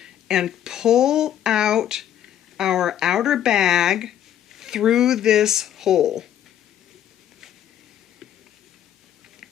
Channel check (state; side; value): quieter; right; 10.7 dB